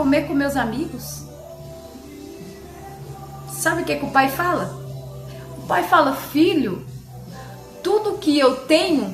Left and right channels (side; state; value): both; identical; correlation 1.00